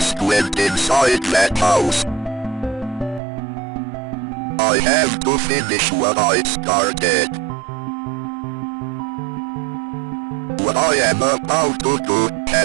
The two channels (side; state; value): left; drops out; at 3.2 s